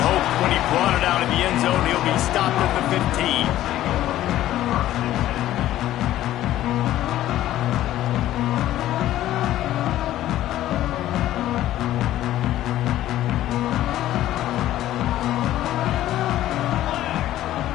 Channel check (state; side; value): quieter; right; 13.7 dB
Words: hoped when he brought it out of the end zone. He'll be stopped at the 15.